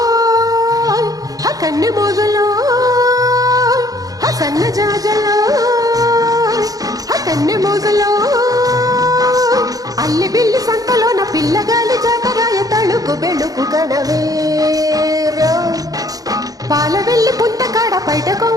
కన్నె మోజలో సన్న జాజలో కన్నె మోజలో అల్లి బిల్లి సంతలో నా పిల్లగాలి జాతరాయ తళుకు బెళుకు గడవేరా పాల వెళ్ళి పుంత కాడ బయట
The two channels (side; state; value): left; late; 0.18 ms